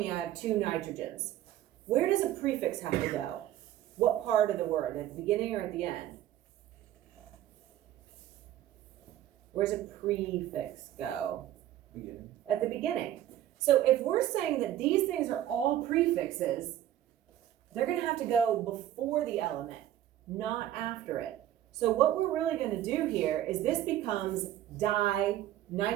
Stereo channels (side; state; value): left; quieter; 12.5 dB